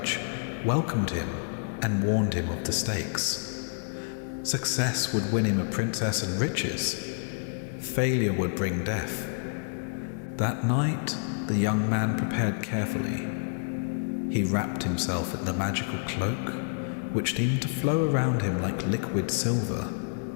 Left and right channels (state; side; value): silent; right; 59 dB below the other